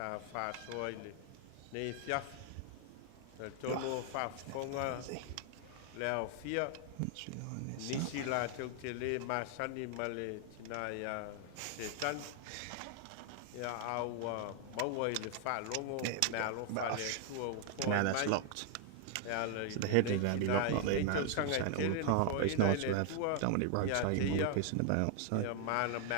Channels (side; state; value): both; different; correlation 0.00